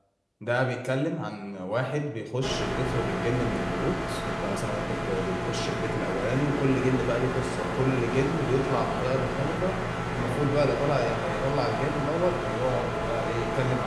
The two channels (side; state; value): both; identical; correlation 1.00